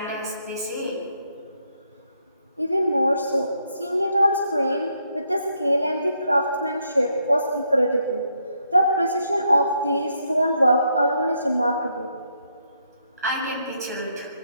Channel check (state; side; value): inverted; both; correlation -0.75